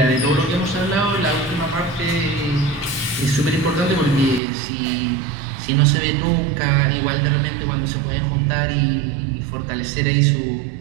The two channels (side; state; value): left; drops out; at 4.4 s